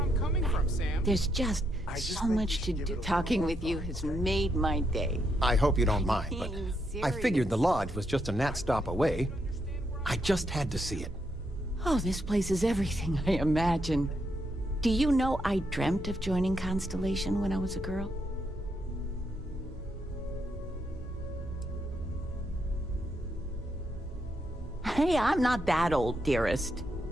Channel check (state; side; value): normal; both; correlation 0.79